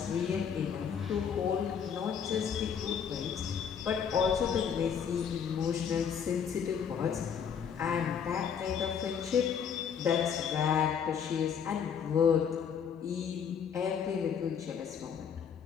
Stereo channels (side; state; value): right; quieter; 7.4 dB